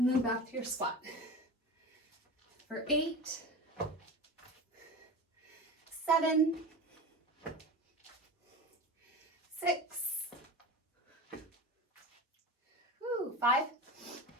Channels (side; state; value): both; normal; correlation 0.29